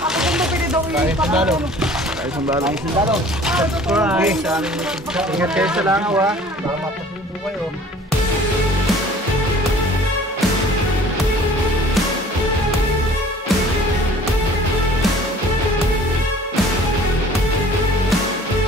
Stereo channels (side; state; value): both; normal; correlation 0.50